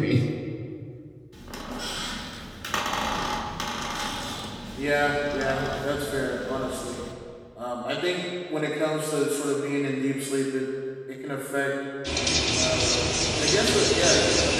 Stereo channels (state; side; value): identical; both; correlation 1.00